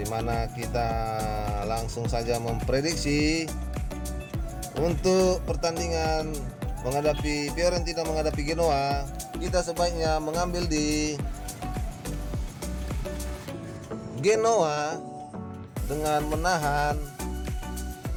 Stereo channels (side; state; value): both; identical; correlation 1.00